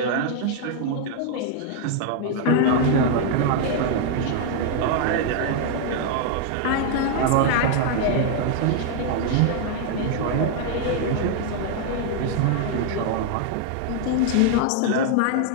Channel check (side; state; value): both; different; correlation 0.00